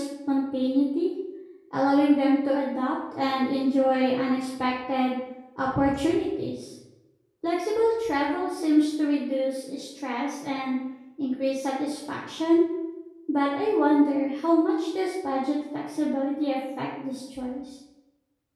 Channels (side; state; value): both; identical; correlation 1.00